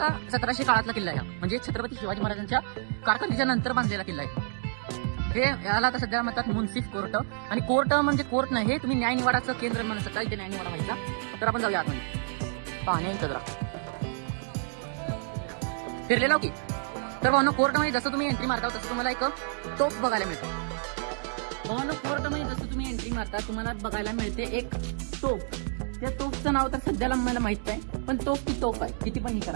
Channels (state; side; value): silent; left; digital silence